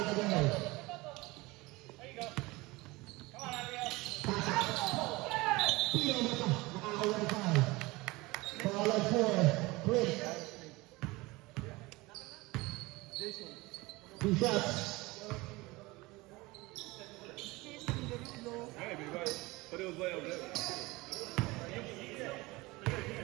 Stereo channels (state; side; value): quieter; left; 22.1 dB